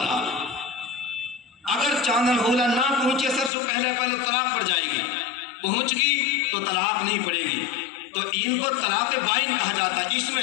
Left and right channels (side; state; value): right; drops out; at 3.5 s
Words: अगर चांदन होला ना पहुंचे असर से पहले तलाक पड़ जाएगी, पहुंच गई तो तलाक नहीं पड़ेगी। तो इनको तलाक बाइन कहा जाता है।